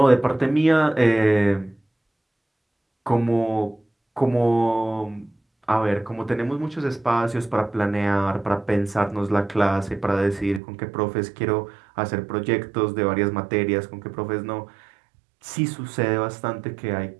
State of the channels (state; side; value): drops out; left; at 10.6 s